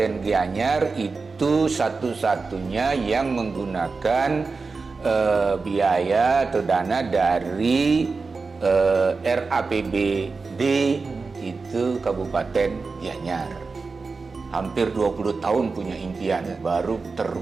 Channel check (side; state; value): left; quieter; 4.3 dB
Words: Gianyar itu satu-satunya yang menggunakan biaya atau dana dari RAPBD itu Kabupaten Gianyar. Hampir 20 tahun punya impian, baru